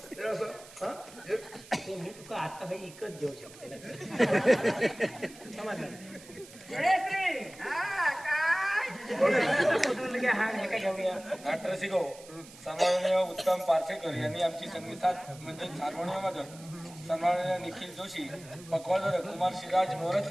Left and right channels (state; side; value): noise; right; hiss, 20 dB below the sound